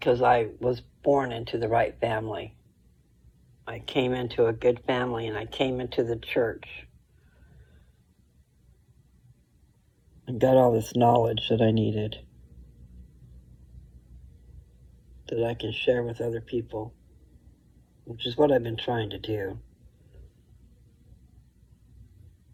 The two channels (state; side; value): identical; both; correlation 1.00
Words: I was born into the right family. I came into a good family and I came into the church and got all this knowledge that I needed that I can share with other people, which is what I've been trying to do.